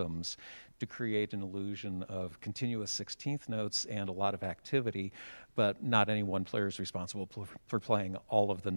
to create an illusion of continuous 16th notes and a lot of activity, but not any one player is responsible for playing all of the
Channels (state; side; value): inverted; both; correlation -1.00